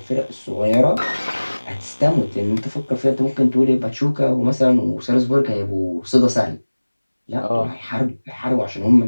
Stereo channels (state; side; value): inverted; both; correlation -1.00